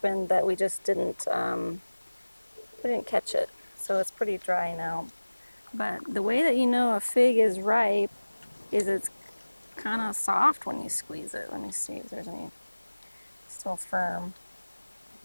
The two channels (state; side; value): inverted; both; correlation -1.00